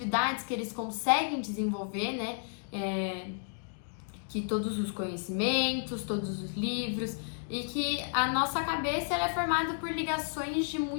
que eles conseguem desenvolver, né? Que todos os conhecimentos, todos os livros, e que a nossa cabeça ela é formada por ligações de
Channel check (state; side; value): silent; right; digital silence